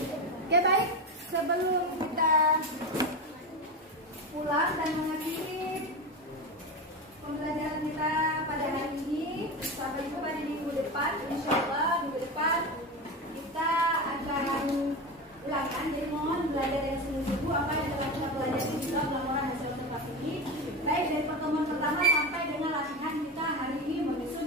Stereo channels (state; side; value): normal; both; correlation 0.21